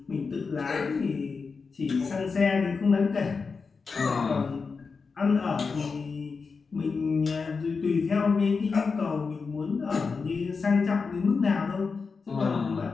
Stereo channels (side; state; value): right; quieter; 4.9 dB